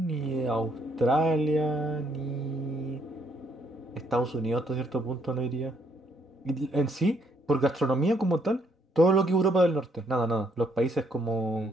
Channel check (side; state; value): both; normal; correlation 0.71